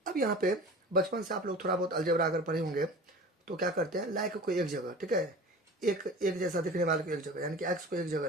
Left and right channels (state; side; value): normal; both; correlation 0.38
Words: अब यहाँ पे बचपन से आप लोग थोड़ा बहुत अलजेब्रा अगर पढ़े होंगे, तो क्या करते हैं, लाइक को एक जगह, ठीक है, एक जैसा दिखने वाले को एक जगह, यानी कि एक्स को एक जगह